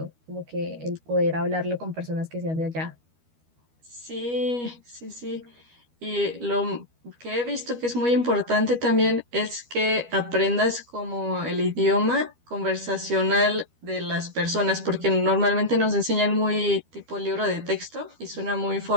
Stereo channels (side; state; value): left; late; 12 ms